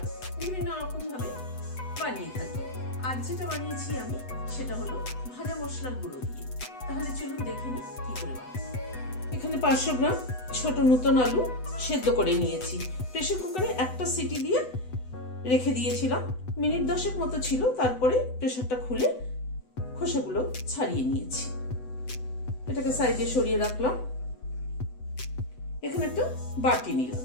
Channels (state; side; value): late; right; 8.0 ms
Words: বিভিন্ন রকম ভাবে বানিয়ে থাকি। আজ যেটা বানিয়েছি আমি সেটা হলো ভাজা মশলার গুঁড়ো দিয়ে। তাহলে চলুন দেখে নিই কি করে বানাই। এখানে 500 গ্রাম ছোট নতুন আলু সেদ্ধ করে নিয়েছি। প্রেসার কুকারে একটা সিটি দিয়ে রেখে দিয়েছিলাম, মিনিট 10 মতো ছিল। তারপরে প্রেসারটা খুলে খোসাগুলো ছাড়িয়ে নিয়েছি। এটাকে সাইডে সরিয়ে রাখলাম। এখানে একটা বাটি নিলাম,